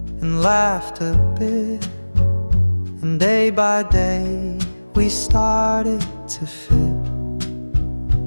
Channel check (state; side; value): inverted; both; correlation -1.00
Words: and laughed a bit. And day by day we started to fit.